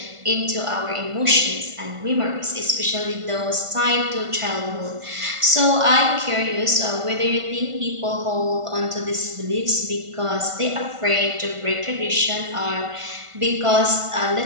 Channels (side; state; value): left; late; 1.5 ms